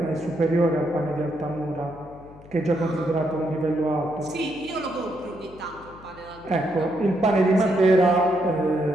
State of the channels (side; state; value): left; noise; hum, 21 dB below the sound